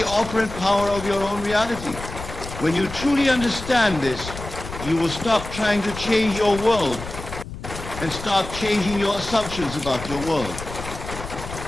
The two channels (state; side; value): noise; left; rumble, 10 dB below the sound